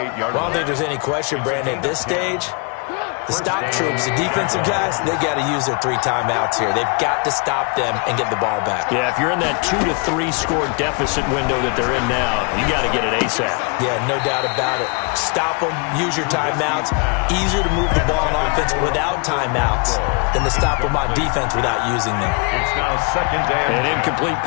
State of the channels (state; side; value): quieter; right; 34.5 dB